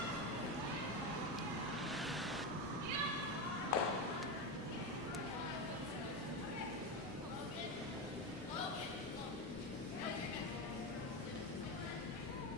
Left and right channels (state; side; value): normal; both; correlation 0.15